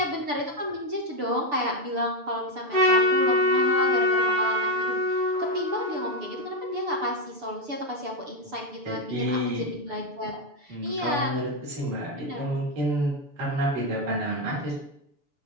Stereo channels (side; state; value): left; late; 6.9 ms